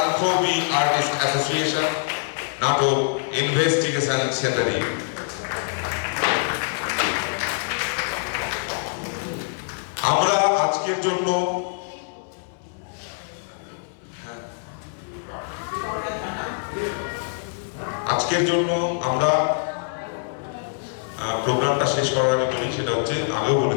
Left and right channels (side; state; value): right; silent; 62 dB below the other